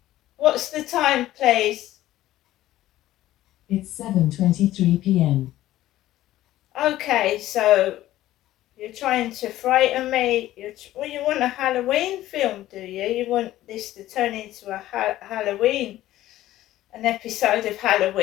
what's the time, please? It's 7:23 p.m. Okay, so you're trying to frighten me. You want a Halloween film, do you? You want this to turn into a Halloween, an episode of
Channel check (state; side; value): quieter; right; 14.6 dB